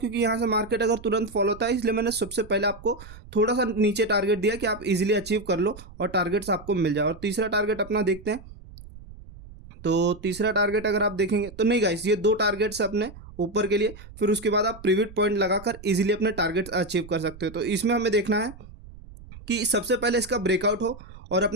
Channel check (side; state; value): right; noise; rumble, 18 dB below the sound